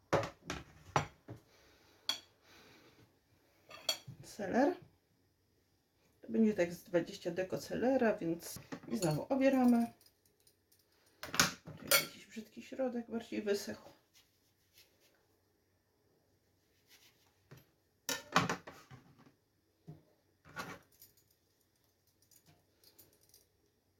Seler. To będzie tak z 20 deko selera, więc i znowu obieramy. Tu jest jakiś brzydki środek, bardziej wysechł.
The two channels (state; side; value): identical; both; correlation 1.00